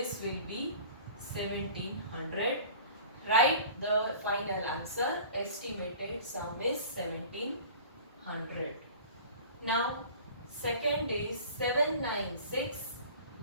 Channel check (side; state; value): both; inverted; correlation -0.42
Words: will be 1700. Write the final answer. Estimated sum is 1700. Now second is 796